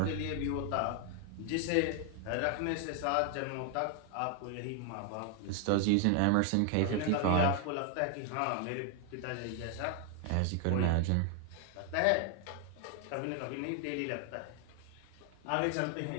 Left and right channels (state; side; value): different; both; correlation 0.00